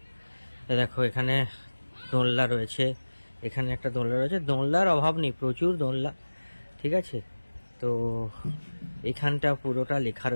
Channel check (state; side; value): inverted; both; correlation -1.00